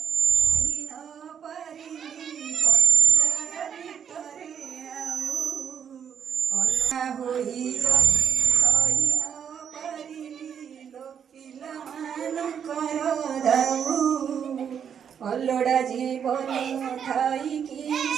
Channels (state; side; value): quieter; left; 7.9 dB